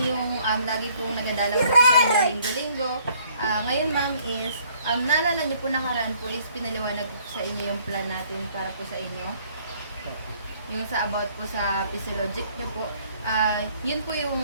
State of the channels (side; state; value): both; inverted; correlation -0.62